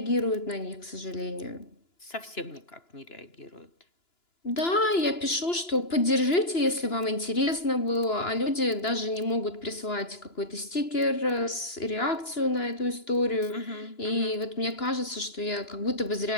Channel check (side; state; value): right; late; 2.9 ms